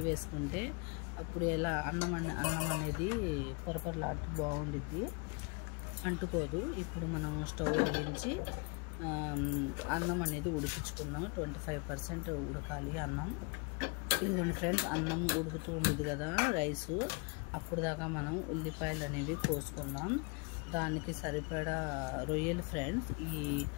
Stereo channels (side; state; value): right; quieter; 32.8 dB